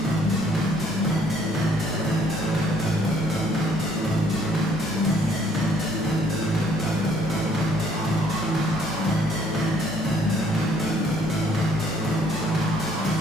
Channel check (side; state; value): both; normal; correlation 0.63